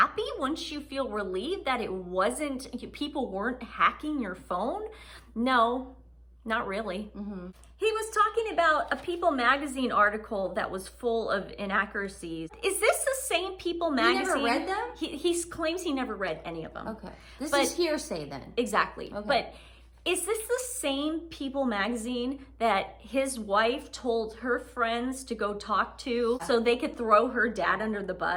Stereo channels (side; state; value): both; identical; correlation 1.00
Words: Wouldn't you feel relieved that people weren't hacking your phone? No, not really. Mm-hmm. He was talking about a People magazine article that was full of inaccuracies. Is this the same People magazine? You never read them? He claims he never read any of them. Okay. This is hearsay then. Exactly. Okay. But is this the same People magazine that his wife told her friends to go talk to so they could throw her dad under the